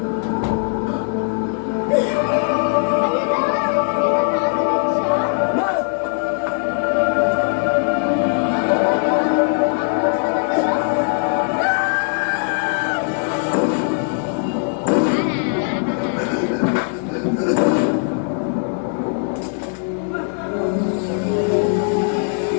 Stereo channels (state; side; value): silent; right; 58 dB below the other